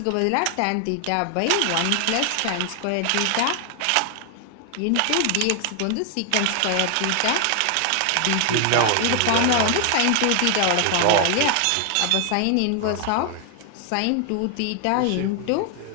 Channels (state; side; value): different; both; correlation 0.00